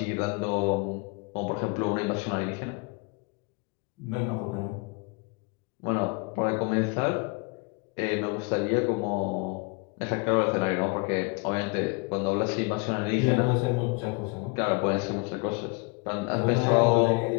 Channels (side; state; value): right; quieter; 30.3 dB